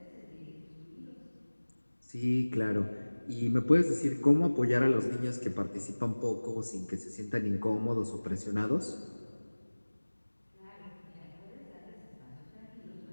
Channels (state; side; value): inverted; both; correlation -1.00